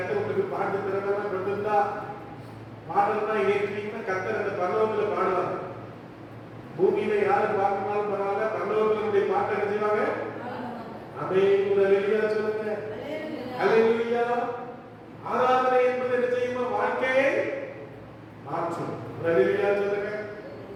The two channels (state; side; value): identical; both; correlation 1.00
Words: பாட்டு திறமையா கொடுத்திருந்தா பாடல்னா ஏற்றீங்கன்னா கர்த்தர் அந்த பரலோகத்துல பாடுவாங்க. பூமியில யாரு பார்க்கணும் பரவாயில்ல, பரலோகத்தினுடைய பாட்டை என்ன செய்வாங்க? ஆமென். ஒரு அல்லேலூயா சொல்லுங்க. அல்லேலூயா. ஆராதனை என்பது என்ன செய்யுமா? வாழ்க்கையை மாற்றும். ஒரு அல்லேலூயா சொல்லுங்க.